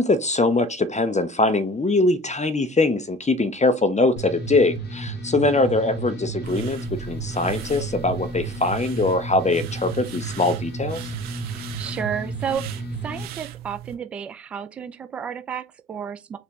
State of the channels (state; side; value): normal; both; correlation 0.44